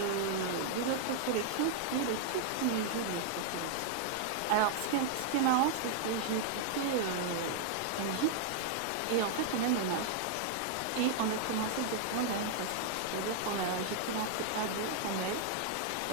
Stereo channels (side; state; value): both; different; correlation 0.00